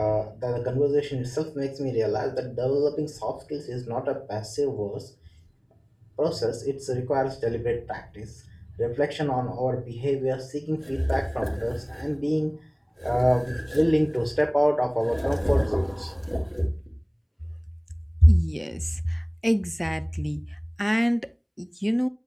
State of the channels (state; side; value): identical; both; correlation 1.00